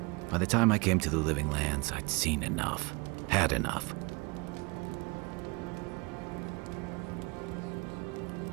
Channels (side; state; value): left; quieter; 28.3 dB